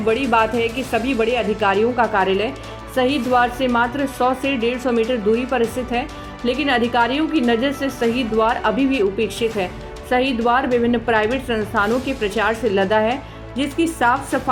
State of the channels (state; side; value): identical; both; correlation 1.00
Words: बात है कि सभी बड़े अधिकारियों का कार्यालय शहीद द्वार से मात्र 100 से 150 मीटर दूरी पर स्थित है, लेकिन अधिकारियों की नज़र से शहीद द्वार अभी भी उपेक्षित है। शहीद द्वार विभिन्न प्राइवेट संस्थानों के प्रचार से लदा है, जिसकी साफ